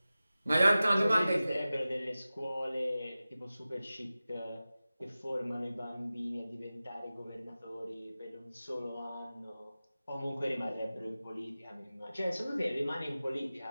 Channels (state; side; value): inverted; both; correlation -0.96